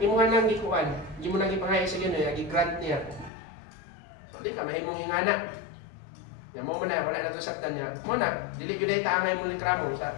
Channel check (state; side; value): drops out; right; at 3.3 s